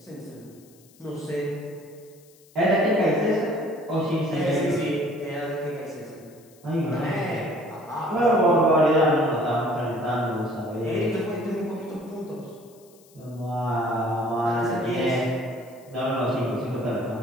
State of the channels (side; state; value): left; noise; hiss, 28 dB below the sound